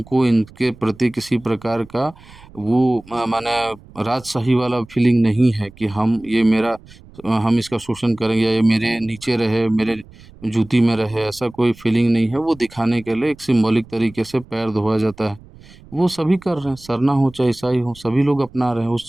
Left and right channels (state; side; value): noise; right; rumble, 23 dB below the sound